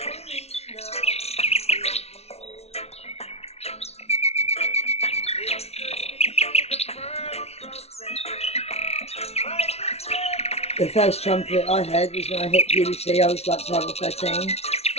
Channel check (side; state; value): right; late; 0.31 ms